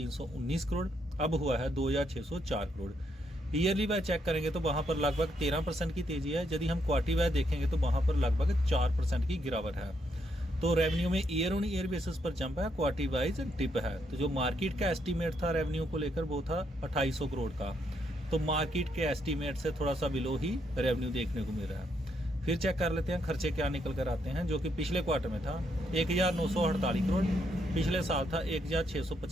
करोड़, अब हुआ है 2604 करोड़। ईयरली वाइज चेक करेंगे तो वहां पर लगभग 13% की तेजी है। यदि हम क्वार्टरली वाइज देखेंगे तो वहां पर लगभग 4% की गिरावट है। तो रेवेन्यू में ईयर ऑन ईयर बेसिस पर जंप है, क्वार्टरली वाइज डिप है। तो जो मार्केट का एस्टीमेट था रेवेन्यू को लेकर वो था 2800 करोड़ का, तो मार्केट के एस्टीमेट से थोड़ा सा बिलो ही रेवेन्यू देखने को मिल रहा है। फिर चेक कर लेते हैं खर्चे क्या निकल कर आते हैं, जो कि पिछले क्वार्टर में था 1948 करोड़, पिछले साल था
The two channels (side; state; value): both; normal; correlation 0.76